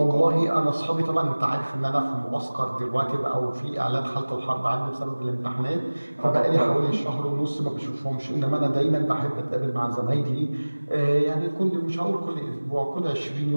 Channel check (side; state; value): both; inverted; correlation -1.00